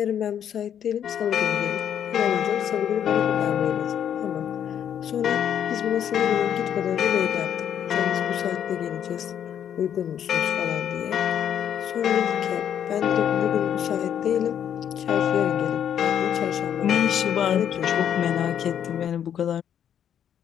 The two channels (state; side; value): quieter; right; 9.3 dB